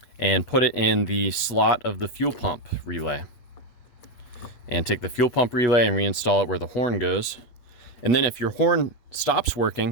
and put it in the slot of the fuel pump relay. And take the fuel pump relay and reinstall it where the horn goes. And then if your horn stops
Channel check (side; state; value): right; late; 8.5 ms